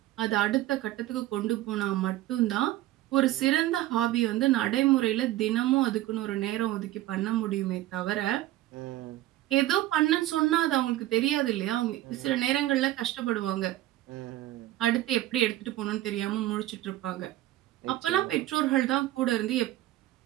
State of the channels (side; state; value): left; quieter; 15.4 dB